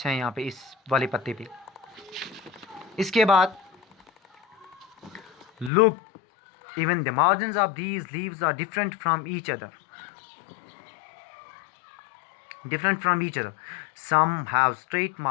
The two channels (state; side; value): drops out; right; at 5.7 s